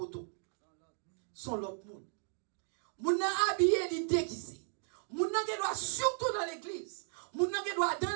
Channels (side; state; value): left; silent; digital silence